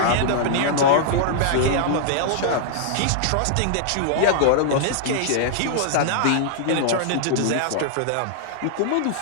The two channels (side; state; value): both; different; correlation -0.01